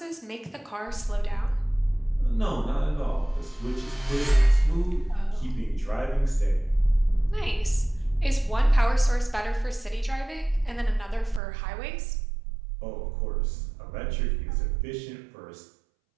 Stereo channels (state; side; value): drops out; left; at 11.4 s